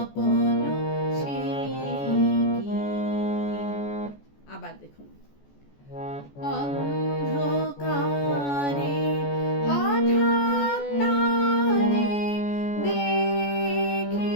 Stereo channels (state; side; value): late; right; 14 ms